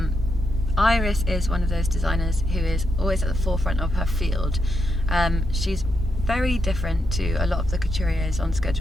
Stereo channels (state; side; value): normal; both; correlation 0.81